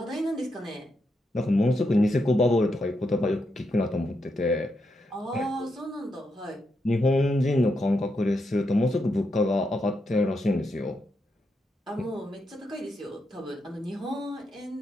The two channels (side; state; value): both; normal; correlation 0.83